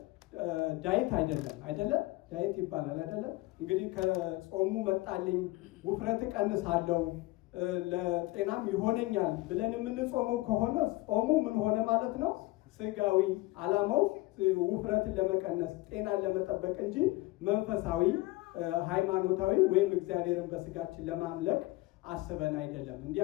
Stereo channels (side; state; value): right; quieter; 20.3 dB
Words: ዳይት አይደለም ዳይት ይባላል አይደለም። እንግዲህ ከጾሙ መጣልኝ ውፍረት ቀንሳለሁ ለጤናም ይሆነኛል ብለን የምንጾመው ከሆነ ጾሙ ምን ሆነ ማለት ነው? ስጋዊ ዓላማው ውፍረትን ለመቀነስ ጤናን ለመጠበቅ እንጂ መንፈሳዊ ሃይማኖታዊ ወይም እግዚአብሔርን በስጋችን ለማምለክ አስበን አይደለም። እንዲህ